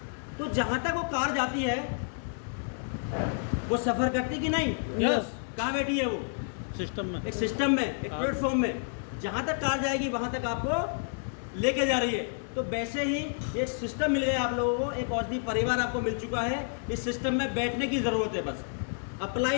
तो जहां तक वो कार जाती है वो सफर करती कि नहीं? यस। कहाँ बैठी है वो? सिस्टम में। एक सिस्टम में, एक प्लेटफॉर्म में। जहां तक कार जाएगी वहां तक आपको लेके जा रही है। तो वैसे ही एक सिस्टम मिल गया आप लोगों को, एक औषधि परिवार आपको मिल चुका है। इस सिस्टम में बैठने की जरूरत है बस।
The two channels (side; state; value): right; silent; digital silence